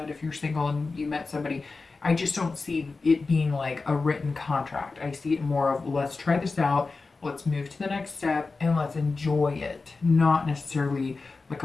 if you're single and you met somebody, I just don't see it being like a written contract. I see it more of, let's try this out, let's move to the next step, and let's enjoy it. Not necessarily like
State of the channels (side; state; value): right; quieter; 4.0 dB